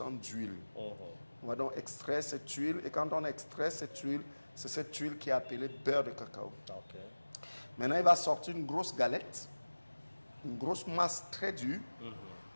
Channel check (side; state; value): both; inverted; correlation -1.00